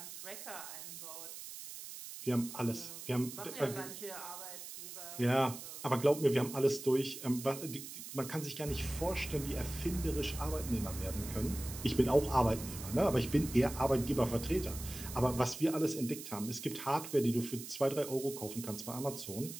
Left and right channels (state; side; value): noise; right; hiss, 11 dB below the sound